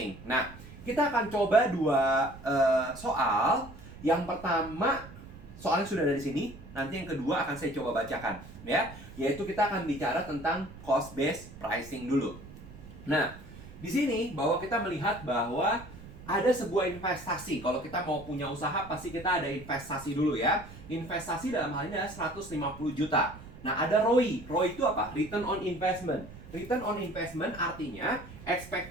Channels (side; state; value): right; noise; rumble, 16 dB below the sound